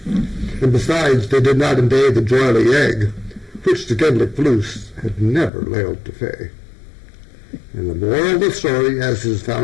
And besides, they did not invade the joyly egg, which the Gedlick Floos had never lailed to fay. And the moral of the story, as is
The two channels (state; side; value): drops out; right; at 5.5 s